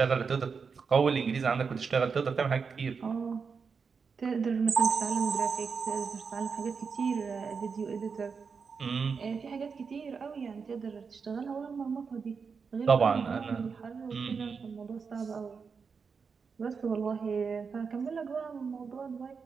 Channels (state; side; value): quieter; left; 5.5 dB